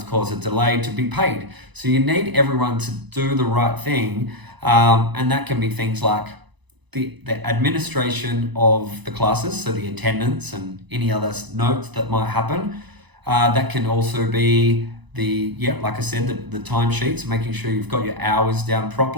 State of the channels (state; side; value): late; left; 1.0 ms